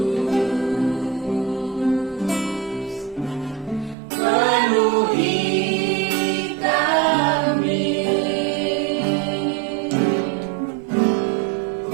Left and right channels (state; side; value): drops out; left; at 4.0 s